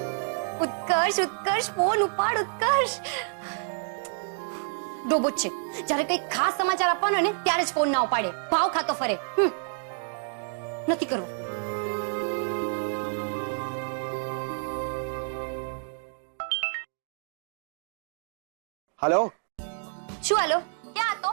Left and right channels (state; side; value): silent; left; 58 dB below the other